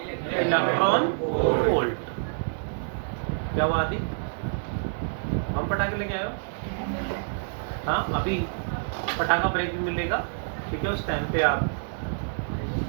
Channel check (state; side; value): silent; left; digital silence